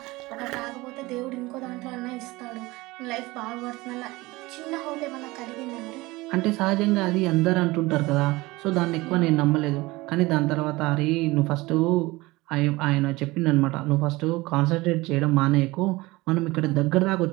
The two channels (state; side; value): quieter; left; 21.1 dB